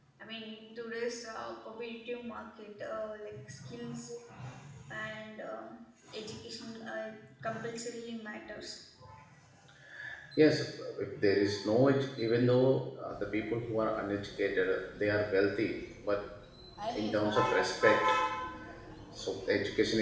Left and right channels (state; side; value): identical; both; correlation 1.00